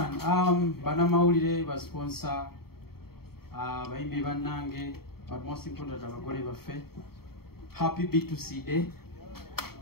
banamawulire ba sponsor bayimbi bannange, but most important abagole baffe. Happy B2C day.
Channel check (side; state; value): right; late; 0.95 ms